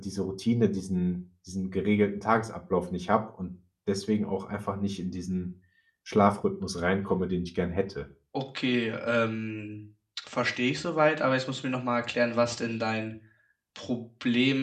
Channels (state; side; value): identical; both; correlation 1.00